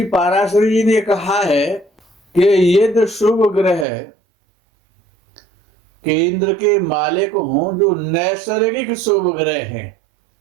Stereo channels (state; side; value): drops out; left; at 3.9 s